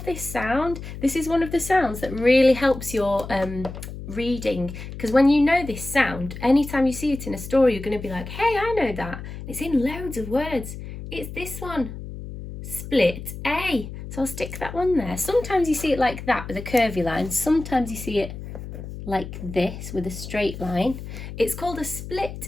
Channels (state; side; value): noise; left; hum, 10 dB below the sound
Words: this sound. This is one of the sounds that really helps your reading, because when you know this sound, anytime you see it in a story, you're going to be like, hey, I know that. It's in loads of words. It's this one. Split A. So I'll stick that one there. Sometimes you see it like that with a curvy line. Sometimes you see it like this with a straight line. It's called a